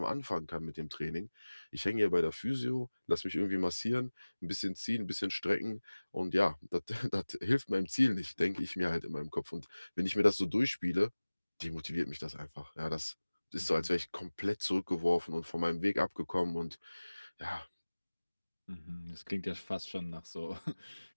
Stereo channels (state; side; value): inverted; both; correlation -1.00